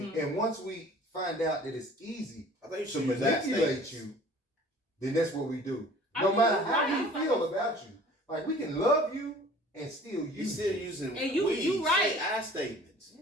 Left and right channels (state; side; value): normal; both; correlation 0.48